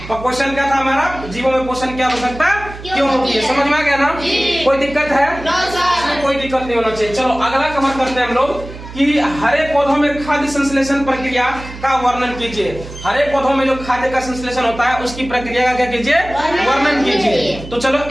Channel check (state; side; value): noise; right; hum, 13 dB below the sound